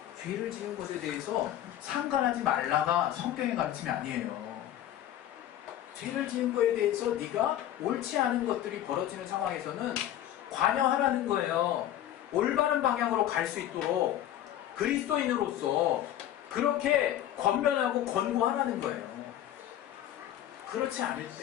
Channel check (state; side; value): quieter; right; 12.2 dB